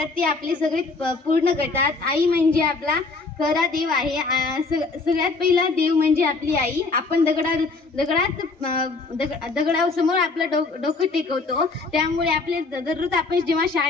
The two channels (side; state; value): right; quieter; 3.9 dB